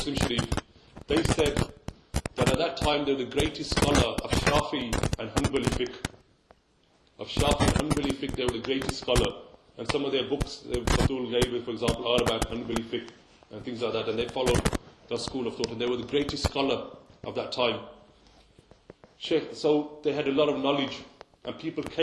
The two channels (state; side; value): identical; both; correlation 1.00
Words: Sharif. They said that at that time they were the greatest scholar of Shafi and Hanbali fiqh. Of Shafi and Hanbali fiqh, they were the greatest scholar. And some of their books, Abdul gave, for example, are about Hanbali fiqh and things like that. And they followed the school of thought. And they were the greatest scholar of that time. So they had a lot of knowledge. And people